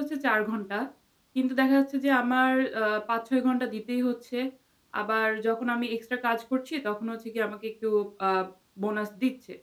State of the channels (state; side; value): identical; both; correlation 1.00